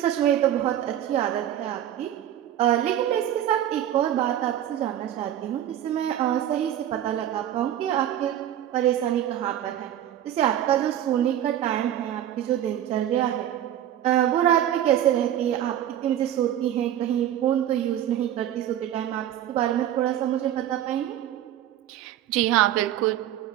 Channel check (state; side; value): quieter; left; 11.4 dB